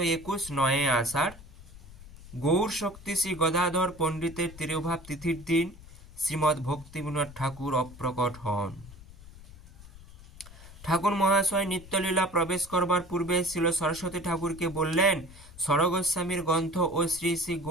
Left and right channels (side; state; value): left; noise; rumble, 18 dB below the sound